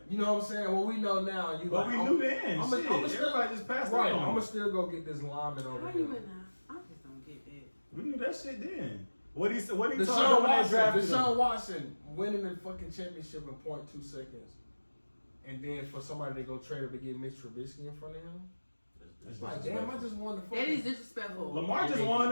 You know what I'm saying? What we know now, you But like, we knew then. I'm Shit, still, everybody just passed right. it on. I'm gonna still go get this lineman over How here. you in that? I just don't get that. We knew that shit then. What he told Deshaun them when they Watson, drafted Deshaun him. Watson winning the fucking championship in 0.2 seconds, and then for somebody to go trade him to get Mitch Trubisky in front of him, it's like, damn, I just won the fucking. That is disrespectful. Lamar just won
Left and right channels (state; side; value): inverted; both; correlation -1.00